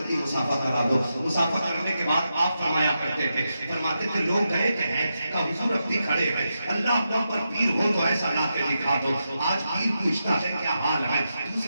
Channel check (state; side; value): inverted; both; correlation -0.87